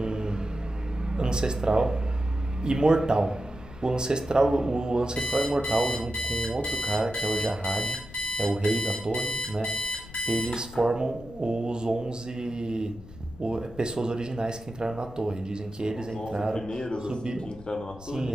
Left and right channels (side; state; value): left; noise; rumble, 18 dB below the sound